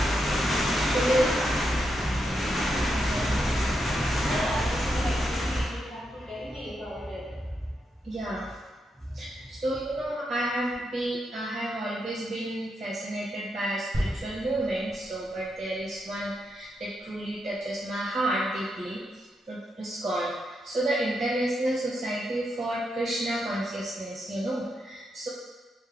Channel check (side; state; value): both; normal; correlation 0.83